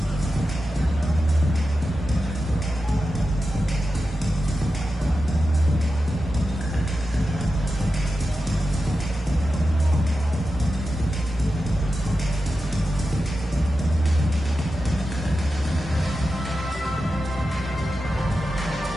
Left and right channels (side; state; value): both; normal; correlation 0.91